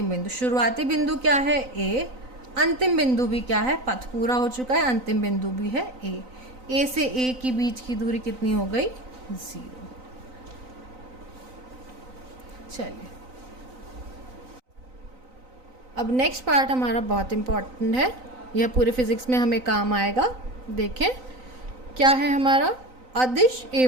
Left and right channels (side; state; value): left; late; 3.9 ms